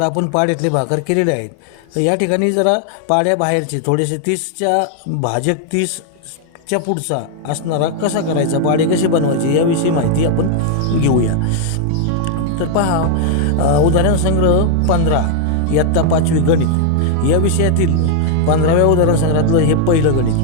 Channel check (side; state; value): both; different; correlation 0.00